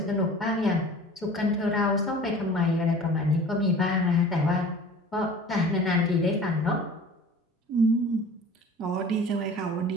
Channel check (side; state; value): both; normal; correlation 0.43